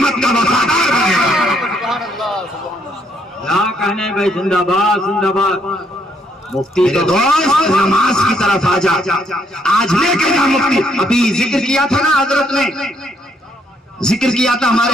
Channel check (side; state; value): both; normal; correlation 0.70